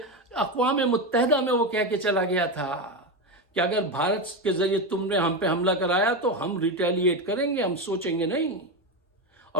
اقوام متحدہ میں وہ کہہ کے چلا گیا تھا کہ اگر بھارت کے ذریعے تم نے ہم پہ حملہ کرایا تو ہم ریٹیلیٹ کریں گے، ہم سوچیں گے نہیں.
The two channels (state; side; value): normal; both; correlation 0.14